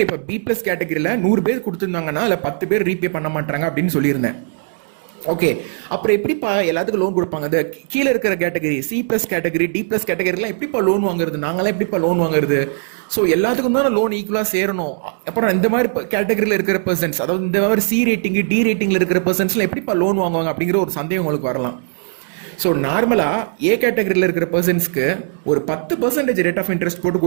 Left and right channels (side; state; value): left; silent; digital silence